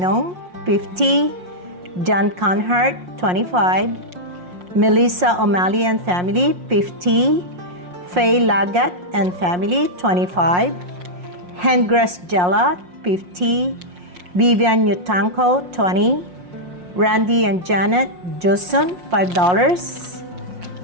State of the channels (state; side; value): late; left; 5.6 ms